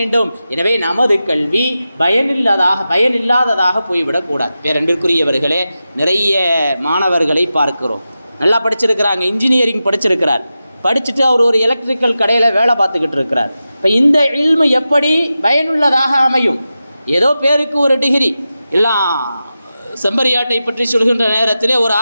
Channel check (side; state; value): both; inverted; correlation -0.92